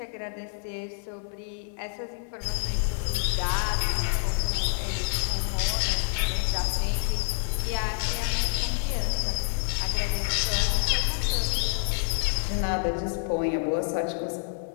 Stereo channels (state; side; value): silent; right; digital silence